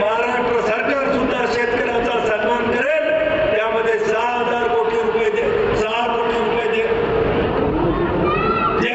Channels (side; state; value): both; identical; correlation 1.00